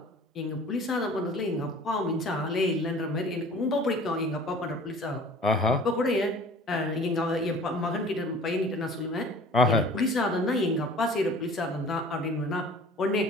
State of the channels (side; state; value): both; normal; correlation 0.46